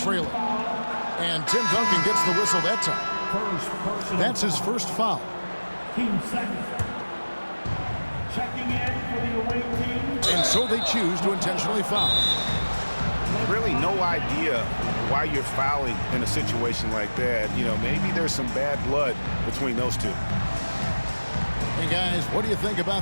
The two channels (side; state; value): both; inverted; correlation -1.00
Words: And Tim Duncan gets the whistle that time. That's his first foul. Team second. Checking in for the away team. And so they choose to intentionally foul. Really no idea why you're fouling in a situation like that. You know, maybe there's some bad blood between those two. Hey guys, what do you think